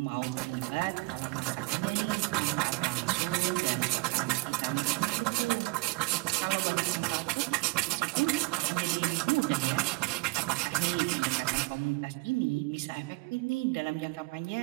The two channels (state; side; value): quieter; left; 25.3 dB